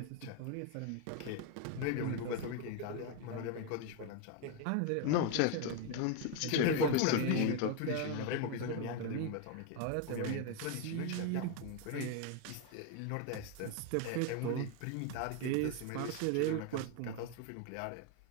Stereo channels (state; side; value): different; both; correlation 0.01